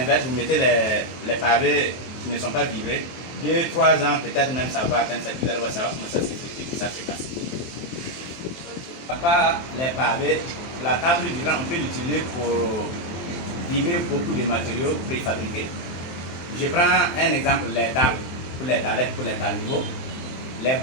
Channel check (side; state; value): right; late; 23 ms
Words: vous mettez les pavés qui ne sont pas vibrés, 2-3 ans, peut-être même ça va atteindre ça, vous allez voir ça va commencer à s'effriter et ça se casse. À part les pavés, la table vibrante, on peut l'utiliser pour vibrer beaucoup de matériaux préfabriqués. Je prends un exemple, les tables, pour les dallettes, pour les talibos, les